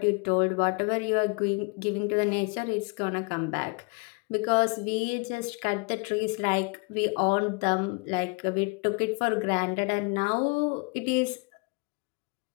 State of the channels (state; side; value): quieter; right; 33.0 dB